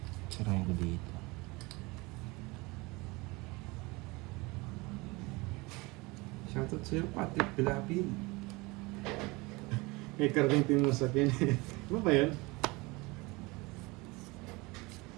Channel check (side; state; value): left; quieter; 24.4 dB